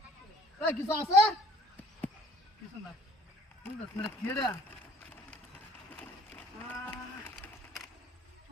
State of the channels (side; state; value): both; normal; correlation 0.57